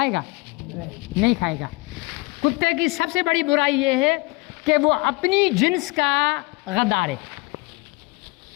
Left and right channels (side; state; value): right; quieter; 24.9 dB